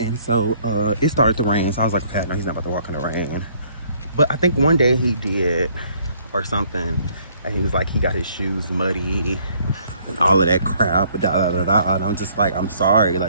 so, it started to rain. So I was like, okay, no, he's not about to walk in the rain. But I think one day he did, or something. And he was like, he got his shoes muddy and all of that crap, And I'm just like, I'm sorry.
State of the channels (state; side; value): inverted; both; correlation -0.63